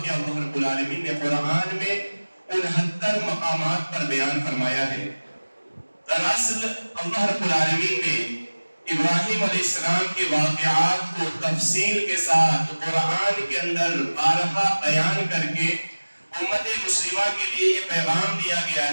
اللہ رب العالمین نے قرآن میں 69 مقامات پر بیان فرمایا ہے۔ دراصل اللہ رب العالمین نے ابراہیم علیہ السلام کے واقعات کو تفصیل کے ساتھ قرآن کے اندر بارہا بیان کر کے امت مسلمہ کے لیے یہ پیغام دیا گیا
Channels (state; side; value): inverted; both; correlation -1.00